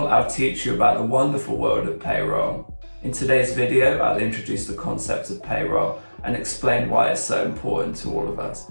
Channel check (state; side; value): inverted; both; correlation -1.00